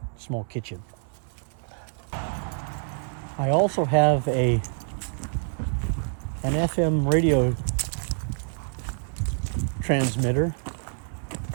small kitchen. I also have an FM radio transmitter,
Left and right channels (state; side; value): silent; left; 60 dB below the other